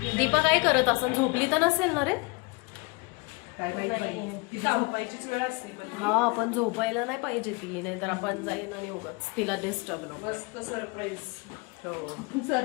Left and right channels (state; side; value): quieter; right; 28.1 dB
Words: दीपा काय करत असं? झोपली तर नसेल ना रे? काय माहिती तिथं झोपायचीच वेळ असते पण. हा, पण झोपायला नाही पाहिजे ती, नाही तर आपण जाईन आणि उगाच तिला डिस्टर्ब नको. मस्त सरप्राईज. हो,